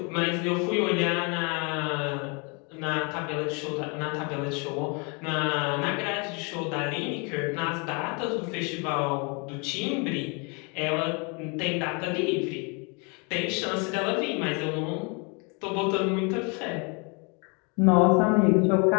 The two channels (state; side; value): quieter; right; 33.0 dB